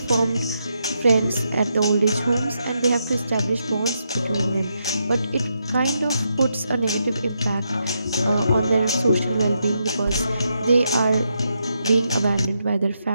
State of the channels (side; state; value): both; inverted; correlation -0.82